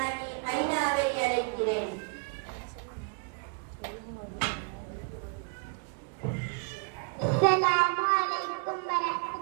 ஐனாவை அழைக்கிறேன். அஸ்ஸலாமு அலைக்கும்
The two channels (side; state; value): left; quieter; 35.9 dB